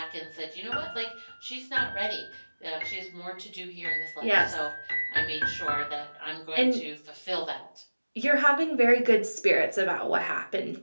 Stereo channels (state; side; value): inverted; both; correlation -1.00